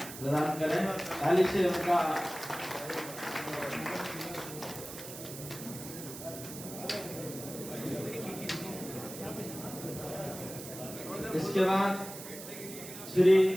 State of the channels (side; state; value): right; noise; hiss, 11 dB below the sound